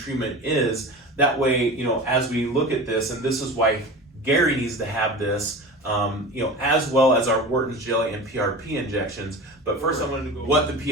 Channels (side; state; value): both; normal; correlation 0.33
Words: is. That way, as we look at this, and this is why Gary needs to have this, as well as our Wharton's jelly and PRP injections. But first I wanted to go over what the